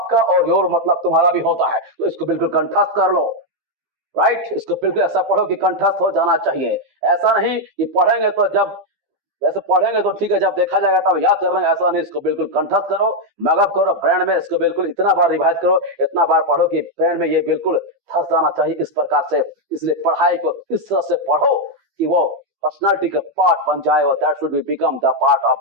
और योर मतलब तुम्हारा भी होता है। तो इसको बिल्कुल कंठस्थ कर लो, राइट। इसको बिल्कुल ऐसा पढ़ो कि कंठस्थ हो जाना चाहिए। ऐसा नहीं कि पढ़ेंगे तो जब वैसे पढ़ेंगे तो ठीक है, जब देखा जाएगा तब याद कर लेंगे, ऐसा नहीं। इसको बिल्कुल कंठस्थ करो, मगअप करो ब्रेन में। इसको बिल्कुल इतना बार रिवाइज करो, इतना बार पढ़ो कि ब्रेन में ये बिल्कुल धंस जाना चाहिए इस प्रकार से। इसलिए पढ़ाई को इस तरह से पढ़ो कि वो पर्सनालिटी का पार्ट बन जाए, और that should be become the part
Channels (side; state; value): left; late; 15 ms